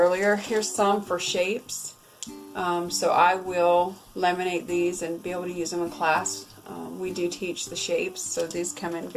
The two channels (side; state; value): both; identical; correlation 1.00